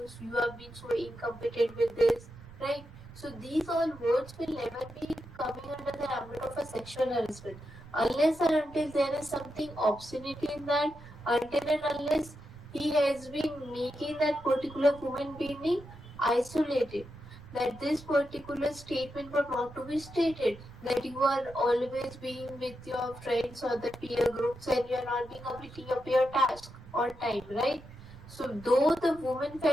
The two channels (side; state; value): right; noise; rumble, 20 dB below the sound